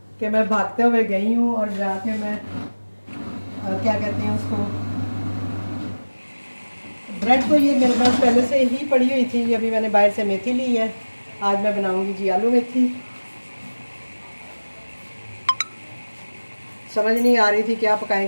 कि मैं भागते हुए गई हूँ और जाके मैं क्या कहते हैं उसको, ब्रेड तो ये मेरे पास पहले से ही पड़ी हुई थी। अभी मैंने बाहर से मेथी ली है, आज मैं बनाऊंगी जी आलू मेथी। समझ नहीं आ रही थी क्या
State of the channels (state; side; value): inverted; both; correlation -1.00